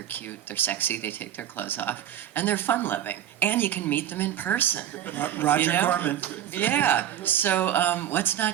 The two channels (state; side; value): quieter; left; 11.0 dB